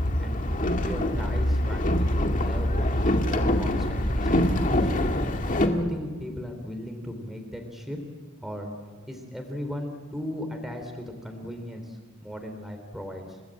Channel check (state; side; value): normal; both; correlation 0.72